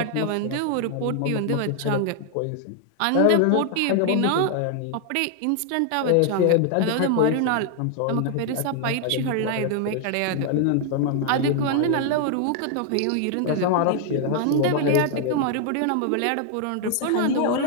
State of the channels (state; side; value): different; both; correlation 0.00